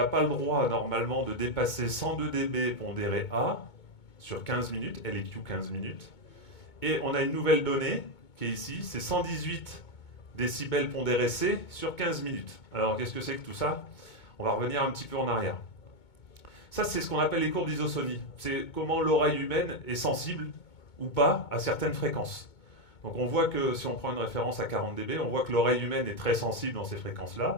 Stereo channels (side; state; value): right; late; 2.2 ms